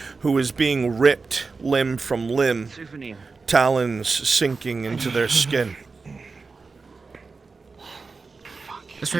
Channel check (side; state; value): left; quieter; 4.3 dB